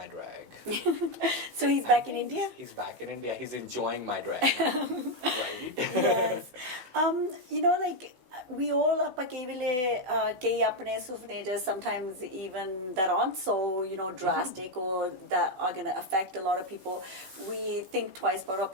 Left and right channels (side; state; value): left; late; 16 ms